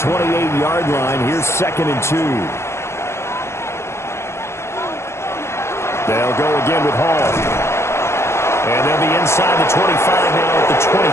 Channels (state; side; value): late; right; 0.13 ms